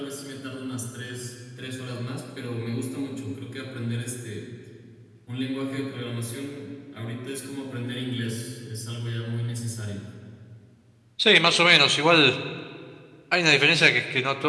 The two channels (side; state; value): both; identical; correlation 1.00